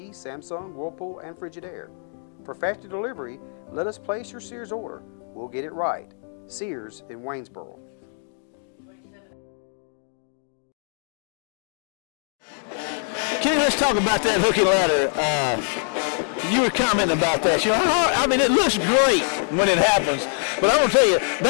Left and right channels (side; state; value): right; silent; 56 dB below the other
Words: Samsung, Whirlpool, and Frigidaire. For faster delivery, let us place your Sears order. We'll get it right. Sears in Waynesboro. Kenny, let's talk about that hook and ladder. You were commenting about that. You know, I mean, it looks great when it happens, but I'm gonna tell you,